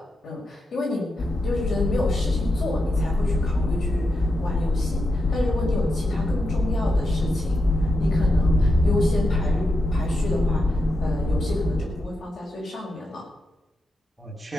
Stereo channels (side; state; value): both; normal; correlation 0.86